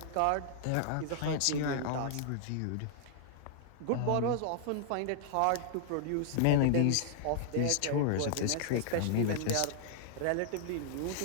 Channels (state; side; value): different; both; correlation -0.01